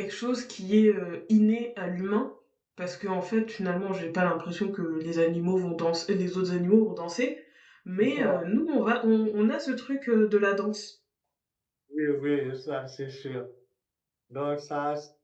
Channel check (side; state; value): both; identical; correlation 1.00